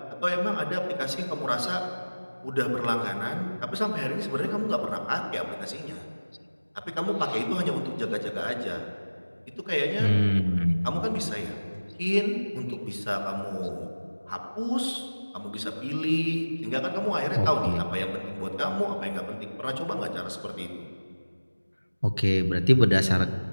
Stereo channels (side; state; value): both; inverted; correlation -1.00